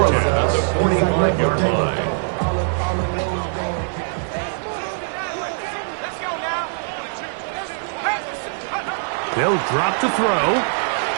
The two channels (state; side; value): silent; left; digital silence